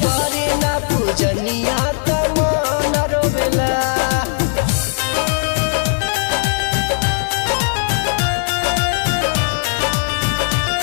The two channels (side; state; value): right; silent; digital silence